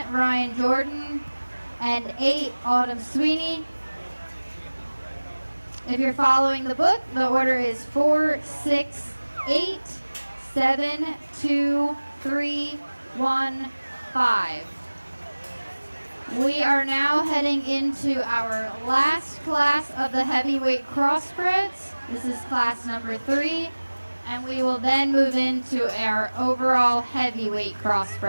Ryan Jordan. And 8, Autumn Sweeney. If you're following the book, the order is 4, 6, 8, 7, 2, 3, 1, 5. We are now heading into our last class of the heavyweight crossbreds. This is class number 3, and we will then move into our overall heavyweight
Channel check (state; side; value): inverted; both; correlation -1.00